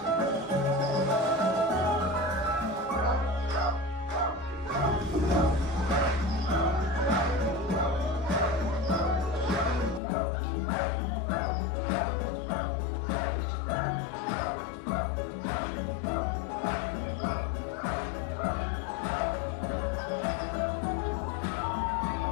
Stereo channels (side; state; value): right; drops out; at 10.0 s